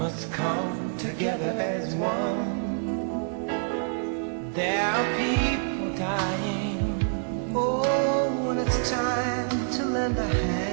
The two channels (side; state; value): left; silent; 60 dB below the other